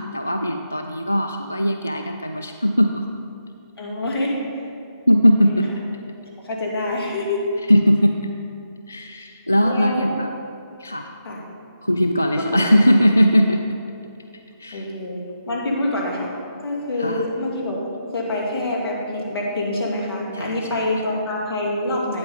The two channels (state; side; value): inverted; both; correlation -0.87